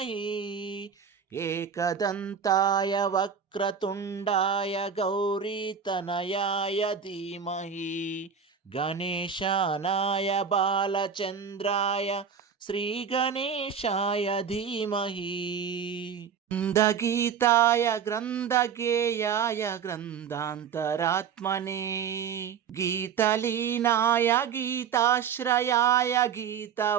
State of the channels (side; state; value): left; quieter; 7.1 dB